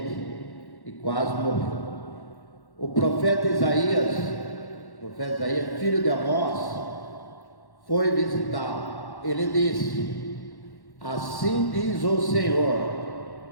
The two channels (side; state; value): right; late; 1.1 ms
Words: e quase morreu. O profeta Isaías, filho de Amós, foi visitá-lo. Ele disse: assim diz o